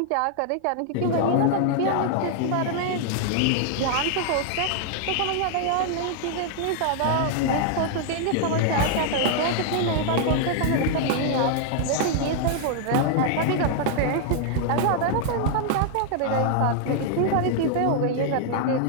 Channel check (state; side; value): different; both; correlation 0.00